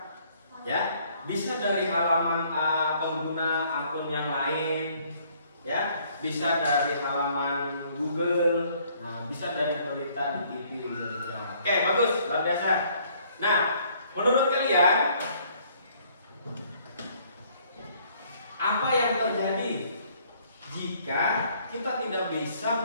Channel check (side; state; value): both; inverted; correlation -0.62